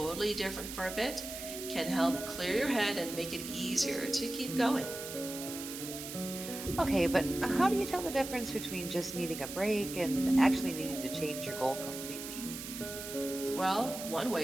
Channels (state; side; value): noise; right; hiss, 9 dB below the sound